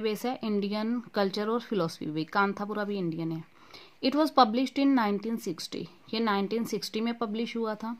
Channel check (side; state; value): both; identical; correlation 1.00